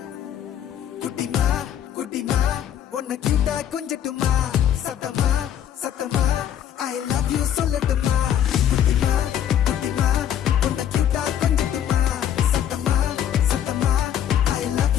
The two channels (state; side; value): quieter; right; 10.0 dB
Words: குட்டிமா குட்டிமா உன்னை கிட்ட கொஞ்சட்டுமா சத்தமா சத்தமா ஐ லவ் யூ சொல்லட்டுமா